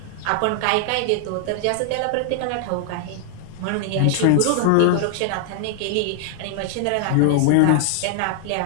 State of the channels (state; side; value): different; both; correlation 0.00